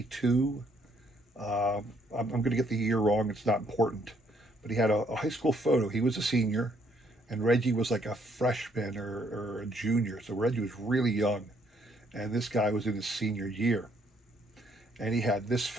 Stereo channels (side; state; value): both; normal; correlation 0.68